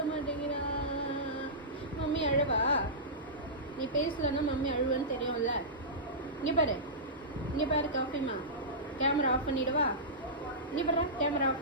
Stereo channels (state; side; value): normal; both; correlation -0.16